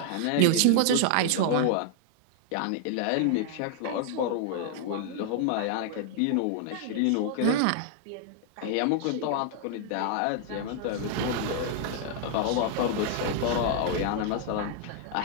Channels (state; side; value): different; both; correlation 0.00